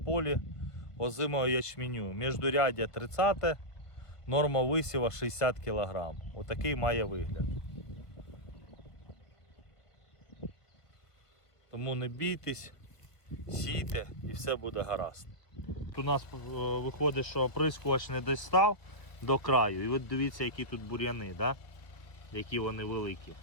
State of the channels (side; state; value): right; late; 1.4 ms